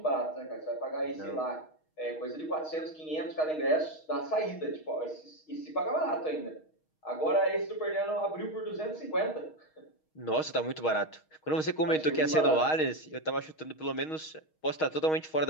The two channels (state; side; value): late; right; 6.4 ms